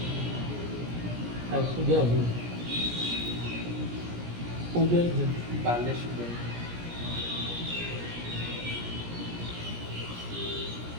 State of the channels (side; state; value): left; late; 17 ms